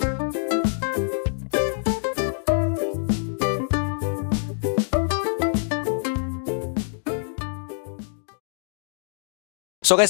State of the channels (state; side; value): silent; right; digital silence